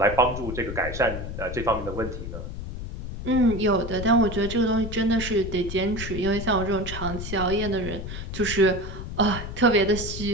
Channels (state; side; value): noise; left; rumble, 7 dB below the sound